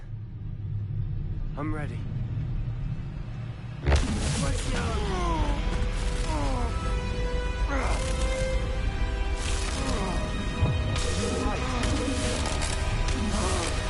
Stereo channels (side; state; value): both; identical; correlation 1.00